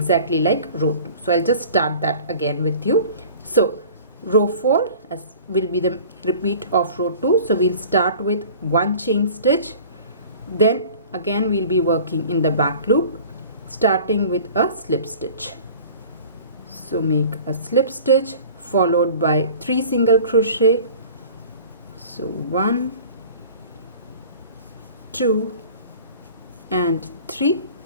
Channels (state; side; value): inverted; both; correlation -0.44